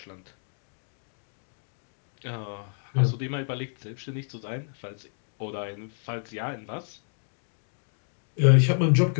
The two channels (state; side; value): silent; right; digital silence